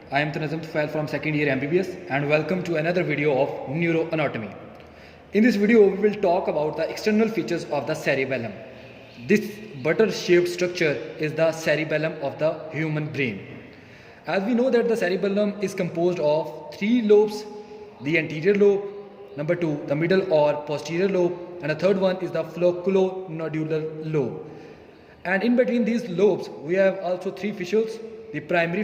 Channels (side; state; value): both; identical; correlation 1.00